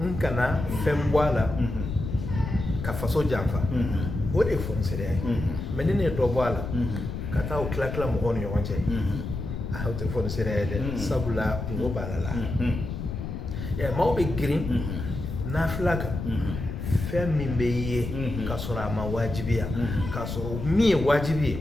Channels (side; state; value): left; noise; rumble, 5 dB below the sound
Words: kana fɛn bɔ a la ka faso janfa o de ye fɔniseriya ye mais ni ne ye dɔ bɔ a la ka taa o tila tila mɔgɔw ni ɲɔgɔn cɛ o tɛ fɔniseriya ye dɛ sabula kungo b'a la maaw bɛ girin nafila kan fɛn min bɛ ye k'a sɔrɔ a ma wajibiya k'a sɔrɔ min ye wajibi ye